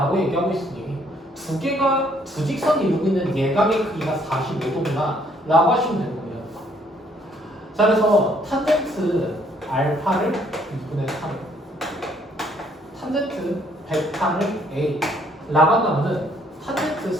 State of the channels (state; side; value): normal; both; correlation 0.66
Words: 얘기하고 있으니 두 직선이 이루고 있는 예각의 크기가 45도구나 라고 하시면 되는 겁니다. 자, 그래서 탄젠트 알파를 2분의 3, 탄젠트 베타를 A 라고 한다면은 탄젠트